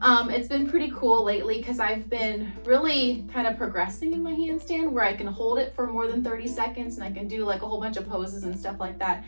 It's been pretty cool lately because I've been really kind of progressing in my handstand where I can hold it for more than 30 seconds and I can do like a whole bunch of poses and stuff like that.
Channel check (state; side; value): inverted; both; correlation -1.00